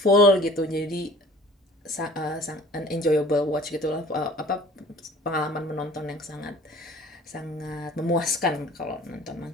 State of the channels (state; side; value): normal; both; correlation 0.49